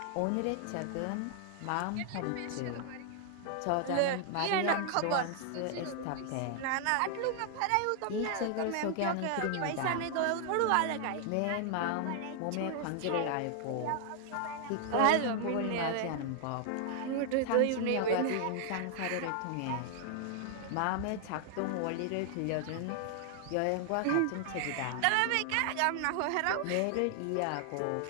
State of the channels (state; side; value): different; both; correlation 0.00